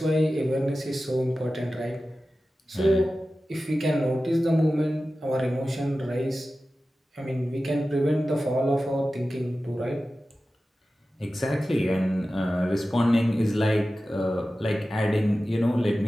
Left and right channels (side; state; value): both; normal; correlation 0.95